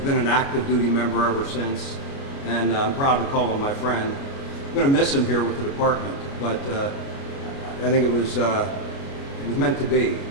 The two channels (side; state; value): right; late; 29 ms